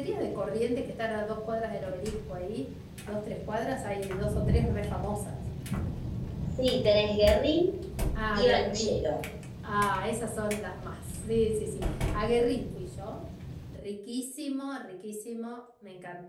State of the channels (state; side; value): identical; both; correlation 1.00